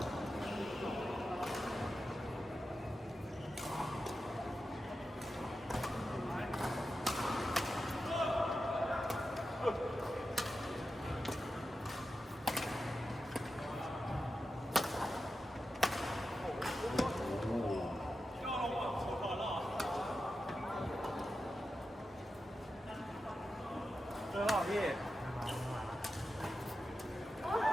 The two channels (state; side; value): normal; both; correlation 0.91